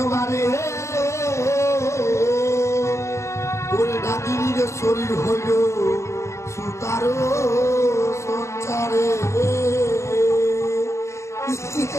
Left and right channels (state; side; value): late; right; 0.14 ms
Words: ওরে নাগিনীর শরীর হইল সুতারো সঞ্চারে।